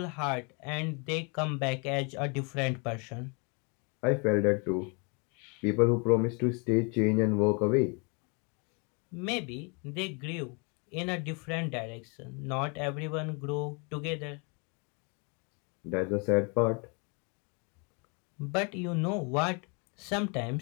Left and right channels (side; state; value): right; quieter; 34.1 dB